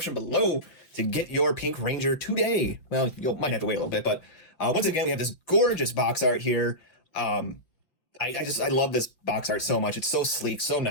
below to get your Pink Ranger today. Well, you might have to wait a little bit, but once again, we have this gorgeous box art here. I love this box art so much. It's so sleek, so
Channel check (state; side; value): late; right; 5.8 ms